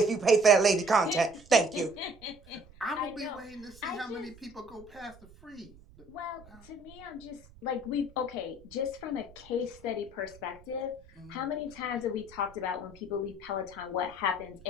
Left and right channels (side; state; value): right; noise; rumble, 23 dB below the sound